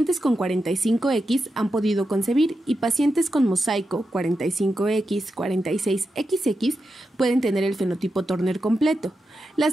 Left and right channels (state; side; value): normal; both; correlation 0.88